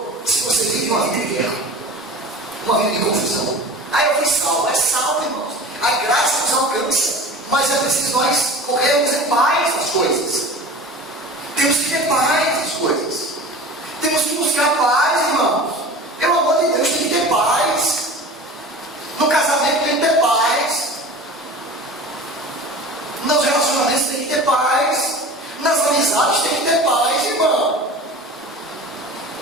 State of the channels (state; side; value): normal; both; correlation 0.37